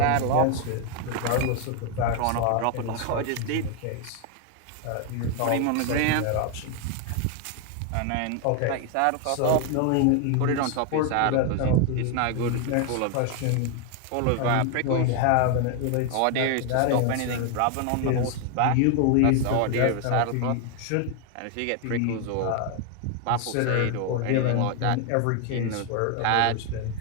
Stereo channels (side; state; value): both; different; correlation 0.01